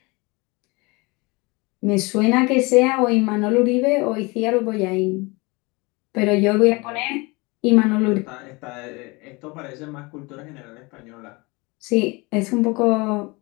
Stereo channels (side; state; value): right; quieter; 25.9 dB